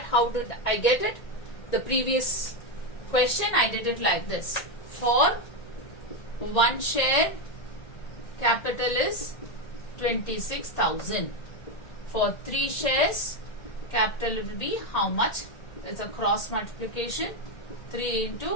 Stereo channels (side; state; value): right; late; 1.8 ms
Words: how did I get it? The previous question I did it like this. For 1 share, capital is 26,000. For 3 shares, capital will be how much? It's a cross multiplication. 3